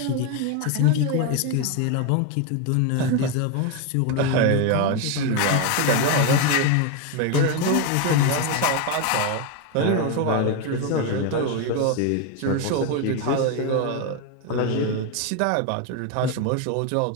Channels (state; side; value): different; both; correlation 0.02